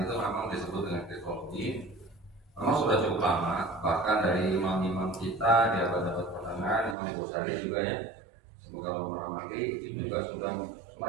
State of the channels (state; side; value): drops out; left; at 7.0 s